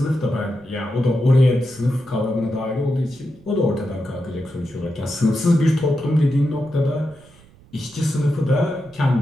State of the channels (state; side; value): noise; right; rumble, 26 dB below the sound